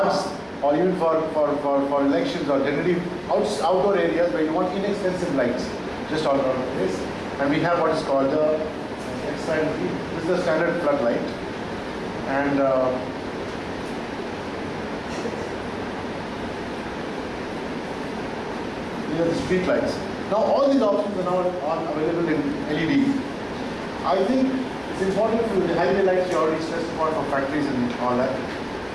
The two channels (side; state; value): both; identical; correlation 1.00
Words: or even for elections, or generally outdoor areas where you want inexpensive lights just all around the place. And we have what is called this is the standard floodlight, and these are the street lights. Now all these options are now available in LED. I think it's important for the highway lights you already stressed upon for factories and all that.